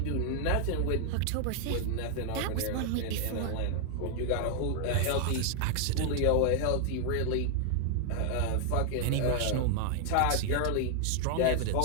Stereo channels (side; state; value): both; different; correlation 0.00